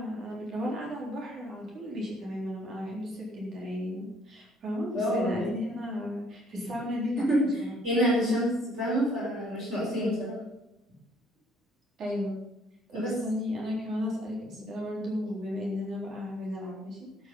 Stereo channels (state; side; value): normal; both; correlation 0.63